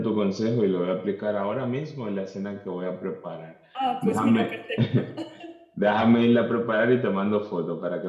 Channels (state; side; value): identical; both; correlation 1.00